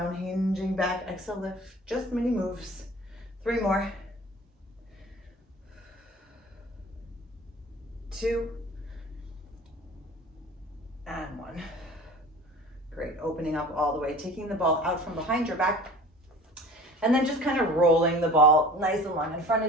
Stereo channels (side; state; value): both; normal; correlation 0.43